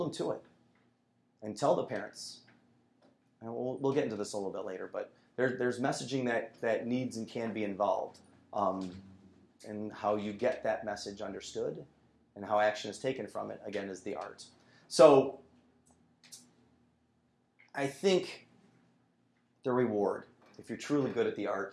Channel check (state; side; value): identical; both; correlation 1.00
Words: them to it and tell the parents. And we'll get into this a little bit later, but there's messaging that needs and can be involved, and how you get that message understood and how action is taken from it, again, is the art. So I think the reward, if you're truly good at the